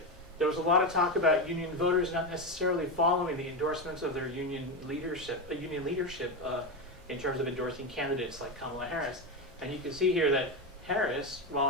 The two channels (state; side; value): normal; both; correlation 0.14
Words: There was a lot of talk about union voters not necessarily following the endorsements of their union leadership in terms of endorsing candidates like Kamala Harris. And you can see here that Harris,